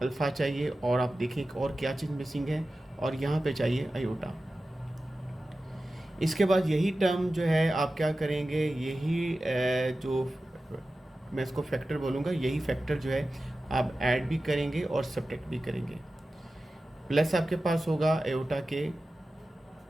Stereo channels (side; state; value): both; normal; correlation 0.94